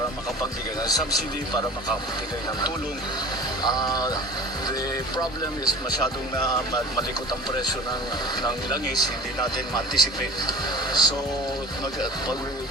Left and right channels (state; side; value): normal; both; correlation 0.39